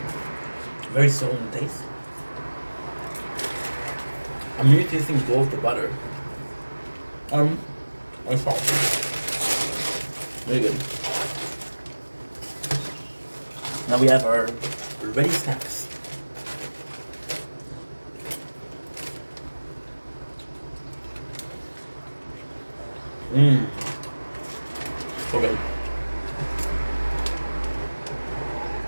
Very subtle in taste. I'm really tasting both the butter and salt. Really good. Now we have our ready snacks. Mmm. So good.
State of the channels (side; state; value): both; inverted; correlation -1.00